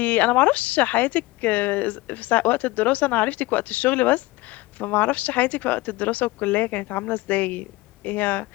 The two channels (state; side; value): quieter; right; 20.8 dB